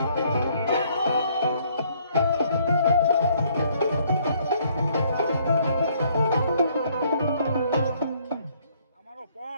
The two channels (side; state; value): both; inverted; correlation -0.65